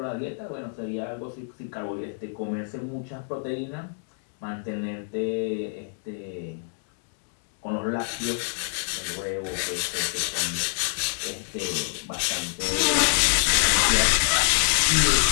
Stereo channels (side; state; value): right; silent; 61 dB below the other